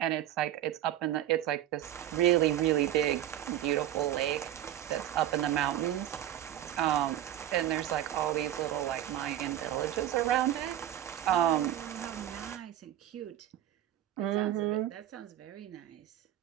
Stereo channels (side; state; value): left; quieter; 12.1 dB